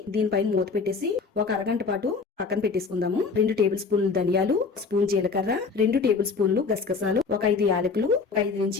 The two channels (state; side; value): quieter; right; 4.8 dB